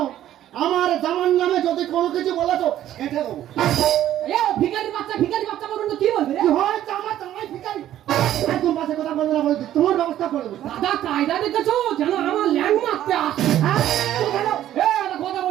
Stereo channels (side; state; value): left; quieter; 12.3 dB